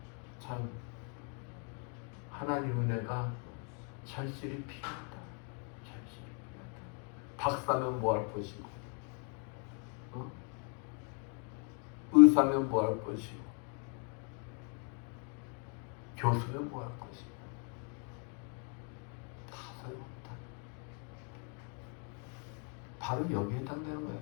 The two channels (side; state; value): right; quieter; 39.8 dB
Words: 참 하나님 은혜가 절실히 필요하다. 절실히 필요하다. 박사면 뭐 할 것이고, 의사면 뭐 할 것이고, 교수면 뭐 할 것이고, 다 소용없다. 바로 여기에 해당되는 거예요.